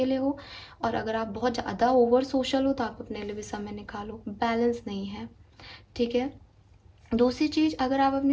हो, और अगर आप बहुत ज़्यादा ओवर सोशल हो तो आप अपने लिए भी समय निकालो। बैलेंस नहीं है। ठीक है, दूसरी चीज़, अगर आप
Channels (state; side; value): identical; both; correlation 1.00